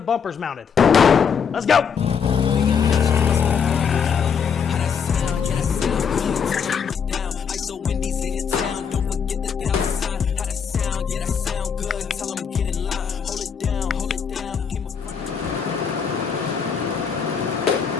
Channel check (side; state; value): right; quieter; 6.7 dB